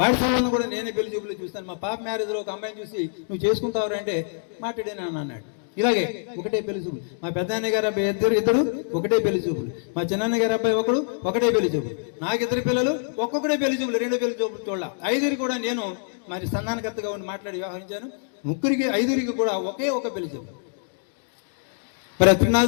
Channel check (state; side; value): silent; right; digital silence